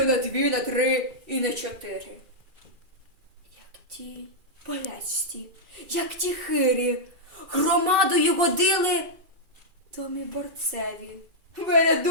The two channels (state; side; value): late; left; 2.4 ms